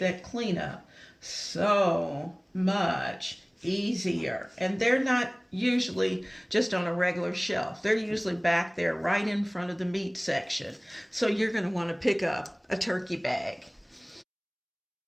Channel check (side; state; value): both; identical; correlation 1.00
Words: cleanup so much easier. And they're not usually just on a regular shelf. They're usually back there right in front of the meat section. So you're going to want to pick up a turkey bag.